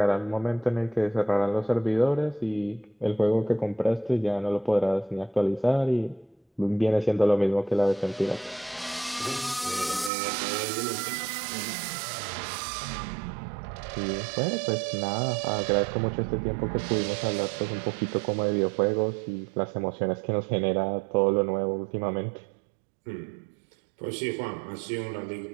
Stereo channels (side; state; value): left; drops out; at 10.1 s